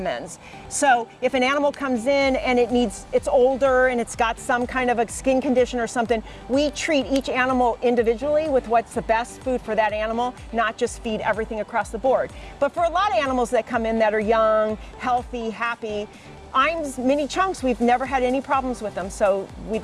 So if an animal comes in and it's older and it's got some kind of a skin condition or something, we treat each animal individually with what's the best food for that animal, not just feed everything across the board. But for a lot of animals that come in that are young, healthy, happy, Iams Mini Chunks, we've never had any problems with them, so we'd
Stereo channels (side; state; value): both; identical; correlation 1.00